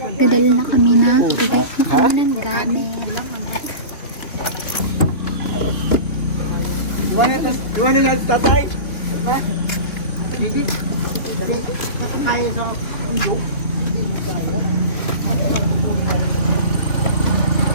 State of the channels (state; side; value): late; right; 2.9 ms